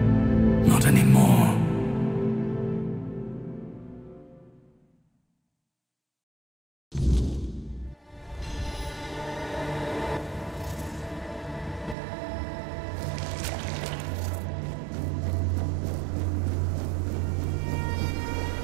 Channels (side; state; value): left; drops out; at 12.0 s